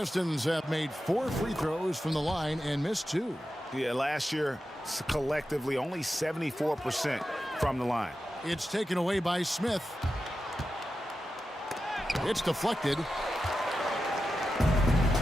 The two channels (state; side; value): normal; both; correlation 0.91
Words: have made 4 free throws from the line and missed 2. Yeah, last year, collectively, only 74% from the line. It's taken away by Smith. It's deflected,